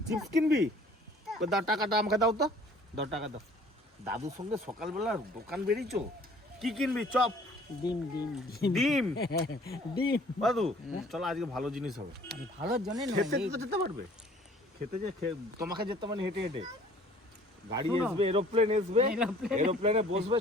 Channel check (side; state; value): both; normal; correlation 0.53